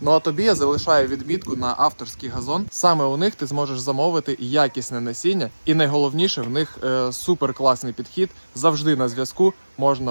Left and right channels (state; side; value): inverted; both; correlation -1.00